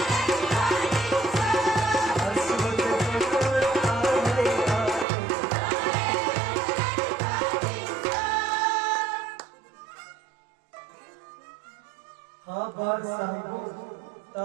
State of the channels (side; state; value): left; drops out; at 5.1 s